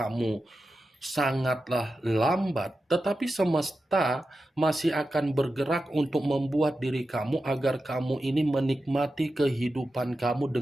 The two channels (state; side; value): normal; both; correlation 0.91